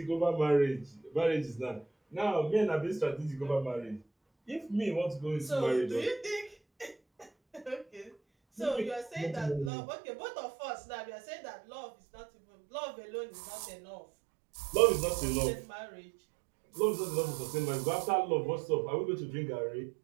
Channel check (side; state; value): left; drops out; at 9.7 s